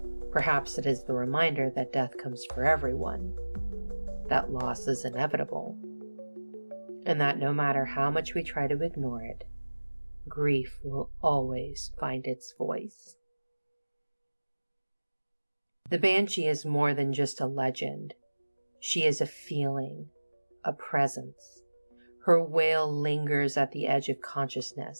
Perhaps it is the reminder that death comes for everyone, that loss is inevitable, and that no matter how much we try to ignore it, grief will always find its voice. The Banshee is more than just a legend. She is a feeling, a presence. Her wail lingers at the edge of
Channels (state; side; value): inverted; both; correlation -1.00